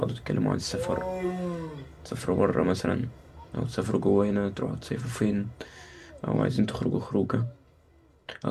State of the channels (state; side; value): identical; both; correlation 1.00